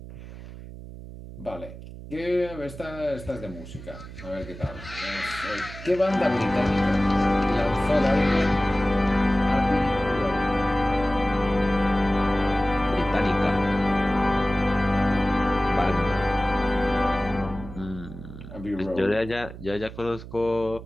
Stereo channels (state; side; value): noise; right; hum, 14 dB below the sound